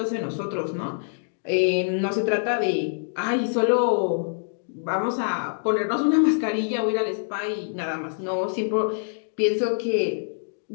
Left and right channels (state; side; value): silent; right; digital silence